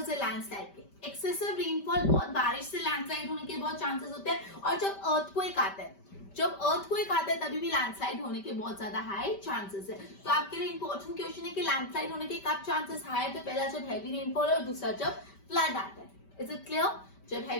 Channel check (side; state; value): right; late; 5.1 ms